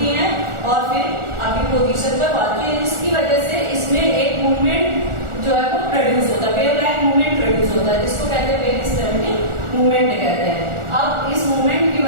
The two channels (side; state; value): left; late; 1.4 ms